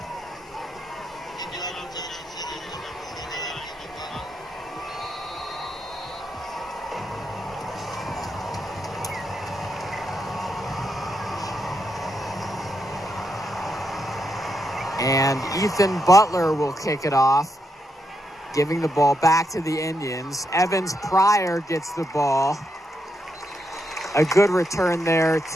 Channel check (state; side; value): normal; both; correlation 0.82